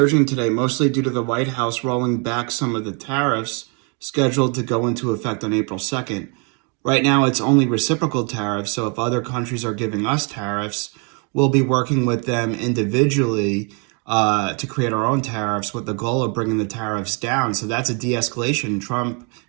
today, mostly due to the White House rolling back some of the tariffs scheduled to go into effect on April 2nd. Right now, it's only reciprocal tariffs, so if other countries are giving us tariffs, we'll be working with them individually to create our own tariffs with the goal of bringing the tariffs down. So that's a de-escalation. Trump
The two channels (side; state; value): left; quieter; 36.0 dB